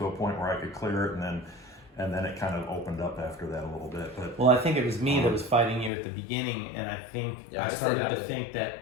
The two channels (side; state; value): right; drops out; at 5.9 s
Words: a point where I could clear it, and then it kind of opened up after that a little bit. But Well, I think it was me that was fighting you at the beginning, and I think I started to think